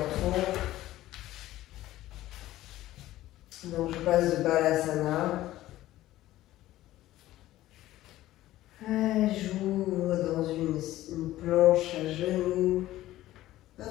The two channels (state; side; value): quieter; right; 15.2 dB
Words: Donc je passe de Balasana. J'ouvre dans une planche à genoux, pas